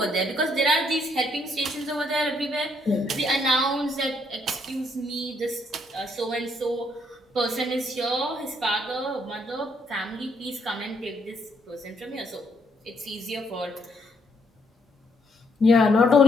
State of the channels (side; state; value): both; normal; correlation 0.71